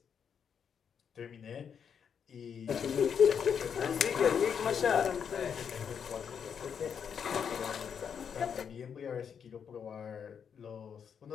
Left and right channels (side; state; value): right; quieter; 7.4 dB